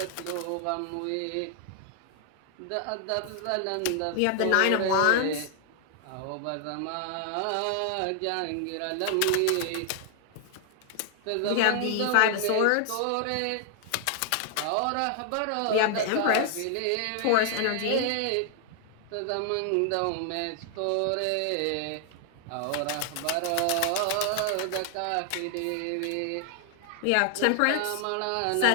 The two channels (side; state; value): both; different; correlation 0.00